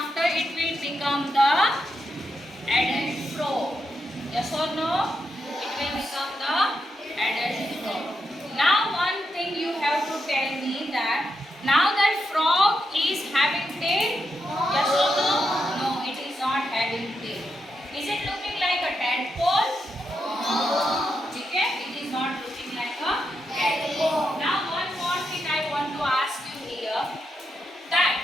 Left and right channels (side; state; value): both; normal; correlation 0.84